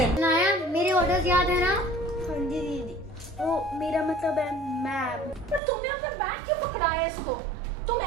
शनाया, मेरे ऑर्डर्स याद है ना? हाँ जी दीदी, वो मेरा मतलब है मैम। पर तुमने अपना बैग क्यों पकड़ाया है इसको? तुम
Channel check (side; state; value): left; drops out; at 5.6 s